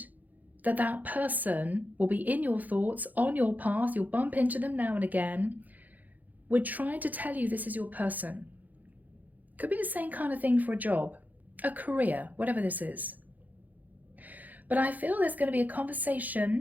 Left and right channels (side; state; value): left; late; 0.081 ms